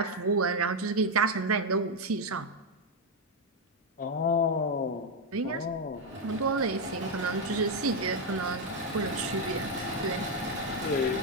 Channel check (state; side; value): normal; both; correlation 0.03